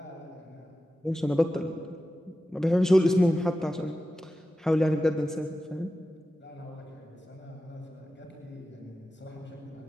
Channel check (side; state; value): both; normal; correlation 0.93